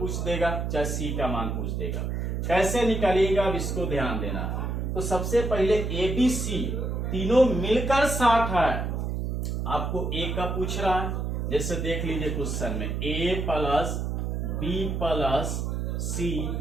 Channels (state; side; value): noise; right; hum, 1 dB below the sound